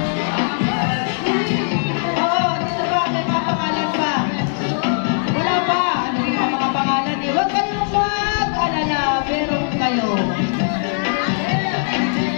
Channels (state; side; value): silent; right; digital silence